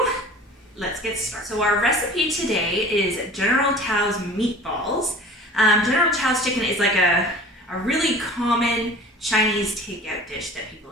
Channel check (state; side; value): normal; both; correlation 0.43